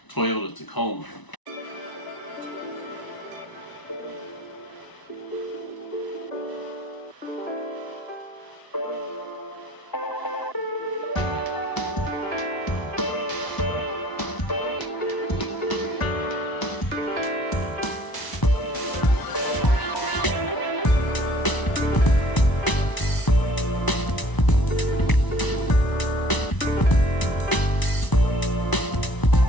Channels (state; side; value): late; right; 1.0 ms